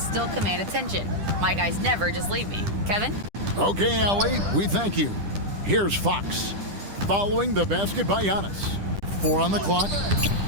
command attention. My guys never just leave me. Kevin? Okay, Allie, we thank you. Here's Fox. Following the basket by Giannis. 4 on the clock.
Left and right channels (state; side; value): late; left; 10 ms